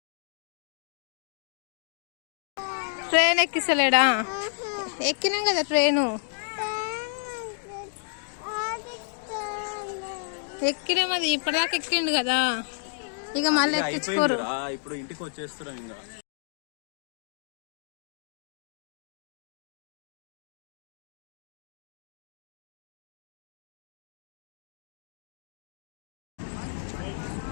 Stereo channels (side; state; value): right; silent; digital silence